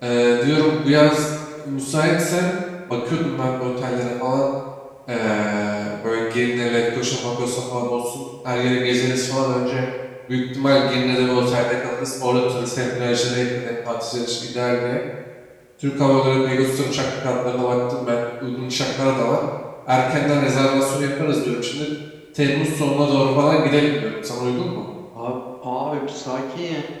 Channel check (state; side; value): identical; both; correlation 1.00